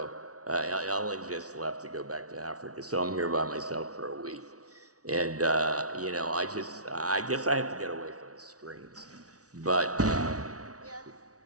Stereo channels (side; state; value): left; late; 0.67 ms